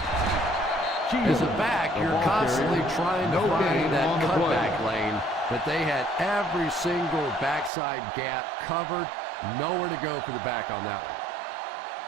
As a back, you're constantly trying to find that cutback lane, but they had every single backside gap covered. Nowhere to go for the back on that one.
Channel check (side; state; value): left; drops out; at 7.7 s